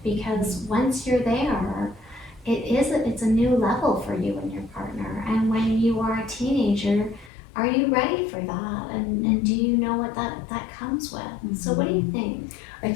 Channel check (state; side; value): drops out; right; at 7.3 s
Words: because once you're there, it's a new level for you and your partner. And when you are a teenager, are you ready for that? And do you know what that comes with? So what do you think? I